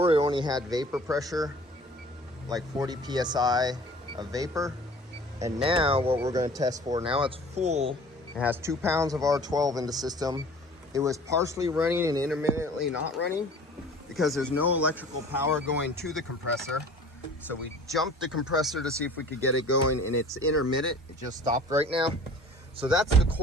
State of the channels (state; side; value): normal; both; correlation 0.46